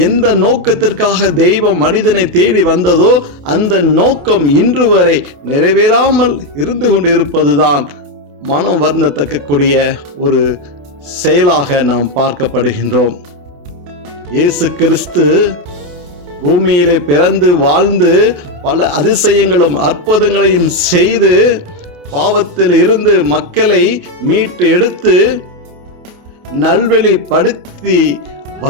எந்த நோக்கத்திற்காக தெய்வம் மனிதனை தேடி வந்ததோ அந்த நோக்கம் இன்று வரை நிறைவேறாமல் இருந்து கொண்டு இருப்பதுதான் மனம் வருந்தத்தக்கக்கூடிய ஒரு செயலாக நாம் பார்க்கப்படுகின்றோம். இயேசு கிறிஸ்து பூமியிலே பிறந்து வாழ்ந்து பல அதிசயங்களும் அற்புதங்களையும் செய்து பாவத்தில் இருந்து மக்களை மீட்டு எடுத்து நல்வழிப்படுத்தி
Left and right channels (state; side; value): late; left; 28 ms